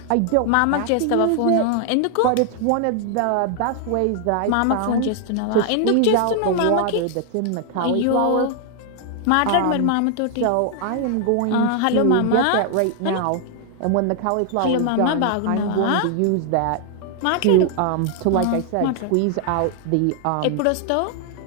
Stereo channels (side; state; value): both; different; correlation 0.00